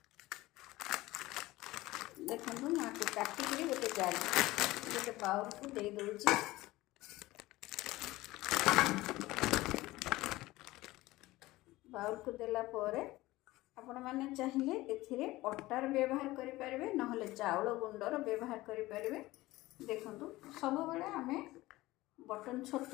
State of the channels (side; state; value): right; quieter; 18.5 dB